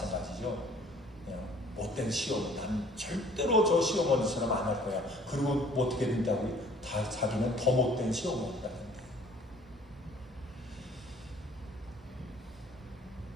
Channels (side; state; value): both; normal; correlation 0.55